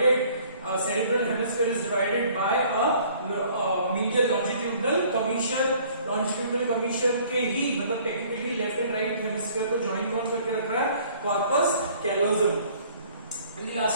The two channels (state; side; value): inverted; both; correlation -0.56